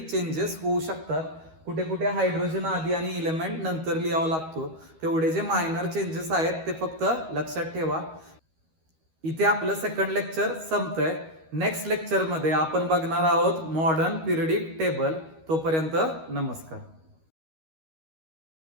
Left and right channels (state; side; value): late; left; 13 ms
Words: चेंजेस होऊ शकतात, कुठे कुठे हायड्रोजन आधी आणि इलेमेंट नंतर लिहावा लागतो, तेवढे जे मायनर चेंजेस आहेत ते फक्त लक्षात ठेवा. इथे आपलं सेकंड लेक्चर संपतंय. नेक्स्ट लेक्चर मध्ये आपण बघणार आहोत मॉडर्न पिरियडिक टेबल. तोपर्यंत नमस्कार.